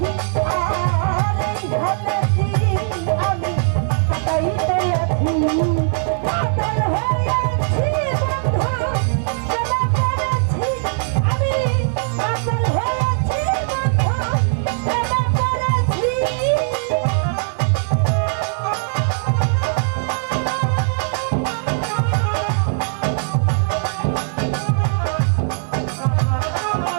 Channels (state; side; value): silent; left; 64 dB below the other